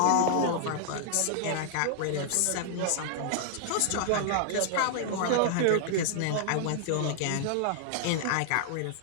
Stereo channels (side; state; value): both; different; correlation -0.01